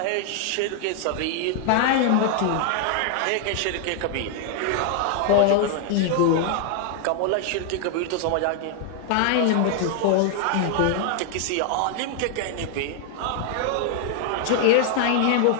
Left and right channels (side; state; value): both; different; correlation 0.00